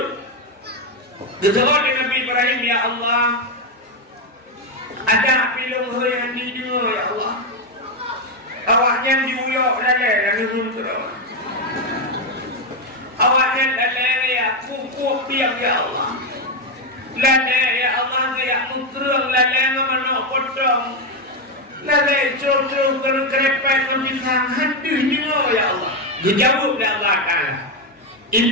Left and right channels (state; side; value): normal; both; correlation 0.06